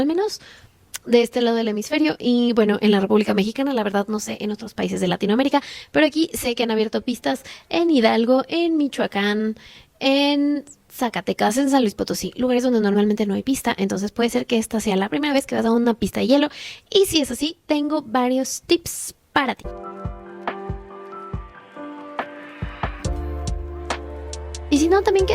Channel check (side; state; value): both; identical; correlation 1.00